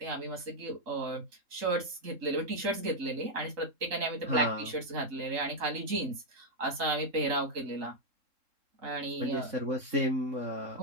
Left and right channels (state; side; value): late; left; 3.7 ms